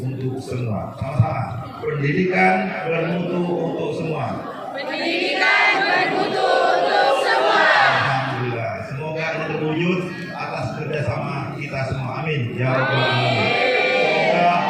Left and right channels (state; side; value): identical; both; correlation 1.00